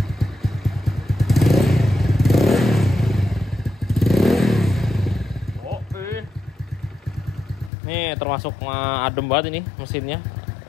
Oke. Nih termasuk adem banget ini mesinnya.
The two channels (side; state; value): right; drops out; at 7.7 s